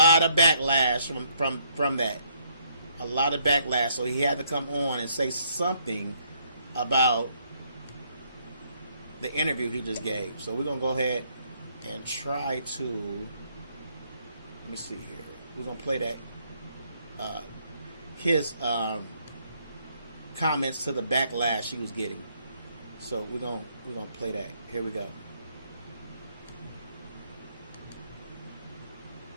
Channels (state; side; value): inverted; both; correlation -0.70